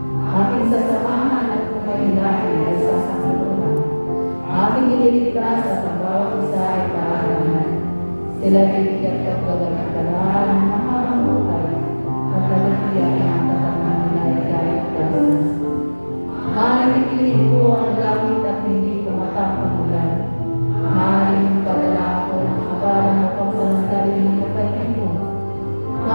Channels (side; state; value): both; inverted; correlation -1.00